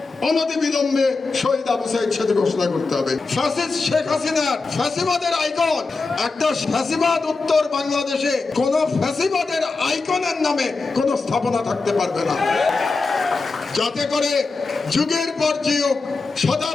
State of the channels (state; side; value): quieter; right; 4.0 dB